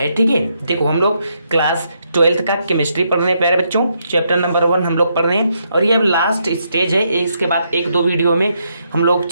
ठीक है, देखो हम लोग क्लास 12th का केमिस्ट्री पढ़ रहे हैं प्यारे बच्चों। चैप्टर नंबर 1 हम लोग पढ़ रहे हैं और ये अब लास्ट स्टेज है। इसके बाद 1-2 वीडियो में हम लोग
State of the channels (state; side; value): inverted; both; correlation -0.77